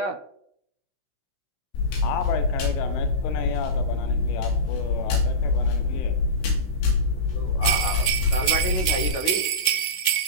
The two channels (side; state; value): right; late; 16 ms